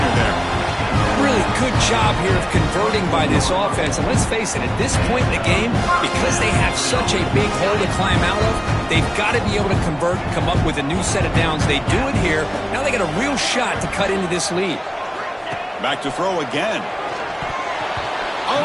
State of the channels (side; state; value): both; identical; correlation 1.00